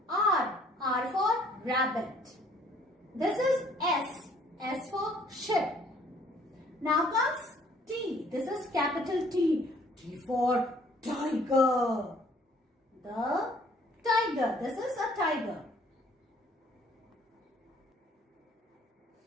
R. R for rabbit. This is S. S for ship. Now comes T. This is capital T. T for tiger. The tiger. This is a tiger.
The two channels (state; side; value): normal; both; correlation 0.60